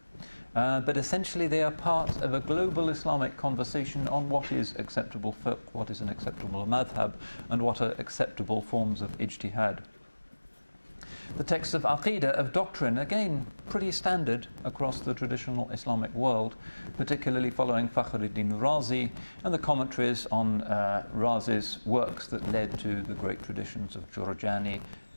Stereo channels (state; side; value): inverted; both; correlation -1.00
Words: but essentially they are part of a global Islamic conversation on what is acceptable fiqh, what is an acceptable madhab, and what are acceptable forms of ijtihad. The texts of aqidah, of doctrine, again pretty standard across the traditional Islamic world, particularly following Fakhruddin Razi and the commentaries on Razi's works that led to the great traditions of Jurjani,